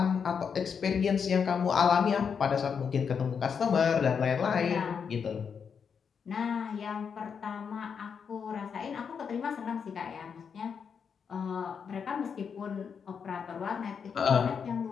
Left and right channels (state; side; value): quieter; right; 6.6 dB